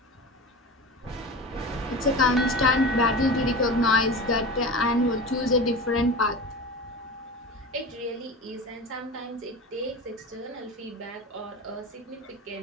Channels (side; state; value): both; normal; correlation 0.30